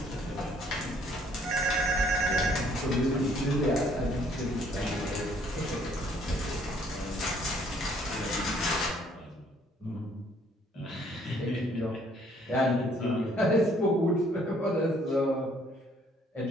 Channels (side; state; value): both; normal; correlation 0.62